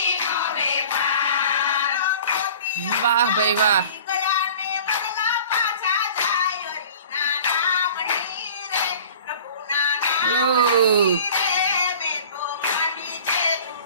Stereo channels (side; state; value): both; inverted; correlation -0.45